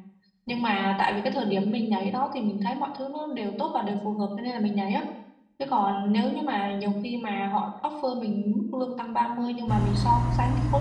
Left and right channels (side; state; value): both; identical; correlation 1.00